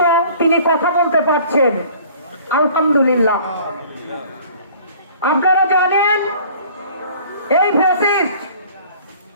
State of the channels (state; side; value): inverted; both; correlation -0.51